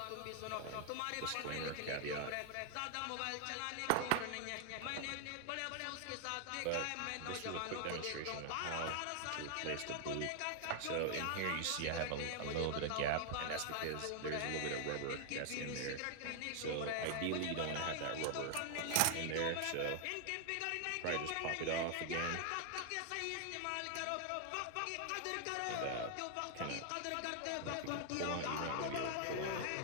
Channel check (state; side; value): different; both; correlation 0.00